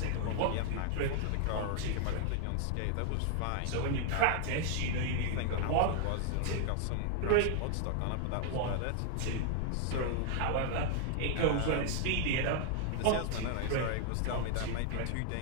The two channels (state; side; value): different; both; correlation 0.00